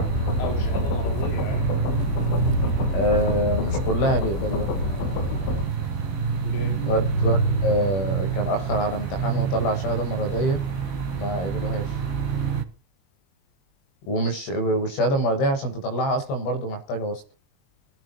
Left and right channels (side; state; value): right; late; 22 ms